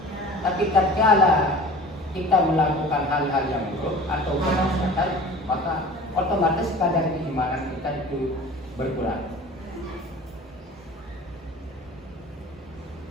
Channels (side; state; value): both; normal; correlation 0.42